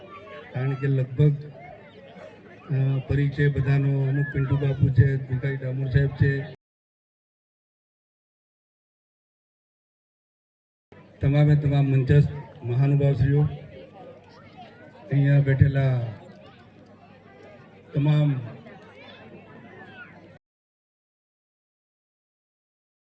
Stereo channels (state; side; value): identical; both; correlation 1.00